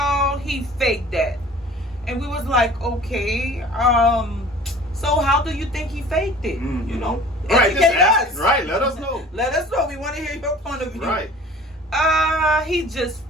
he faked that. And we was like, okay, so how do you think he faked it? Educate us. Right, let us know. Let us know. We want to hear your point of view. Right. He just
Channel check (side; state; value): both; normal; correlation 0.46